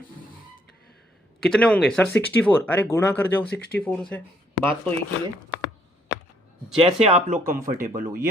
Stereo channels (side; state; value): both; normal; correlation 0.68